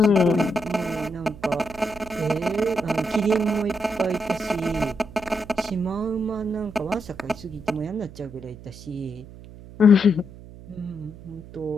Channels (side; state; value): right; noise; hum, 17 dB below the sound